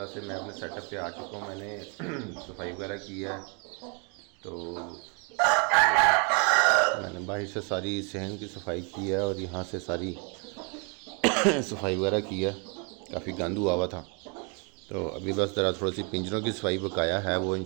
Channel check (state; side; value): quieter; left; 35.5 dB